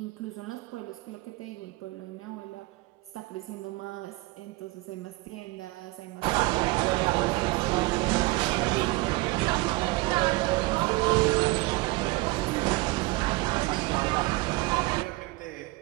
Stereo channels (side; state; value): left; quieter; 22.2 dB